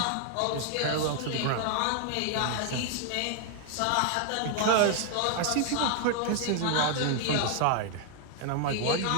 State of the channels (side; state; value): both; different; correlation 0.00